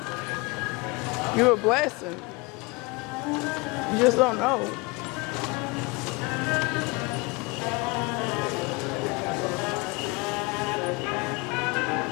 You're a blessing. You just don't know.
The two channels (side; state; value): right; quieter; 26.6 dB